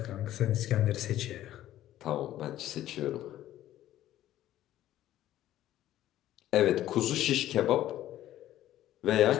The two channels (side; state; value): right; quieter; 13.3 dB